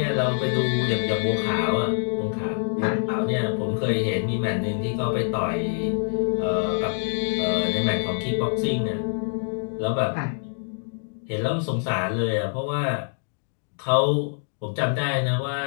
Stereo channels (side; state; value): right; silent; digital silence